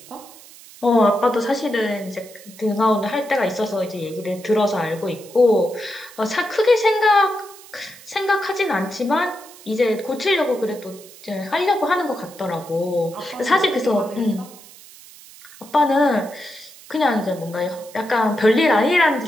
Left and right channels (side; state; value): right; noise; hiss, 20 dB below the sound